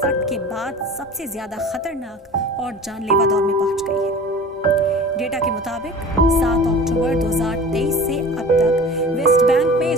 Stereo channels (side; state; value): both; normal; correlation 0.39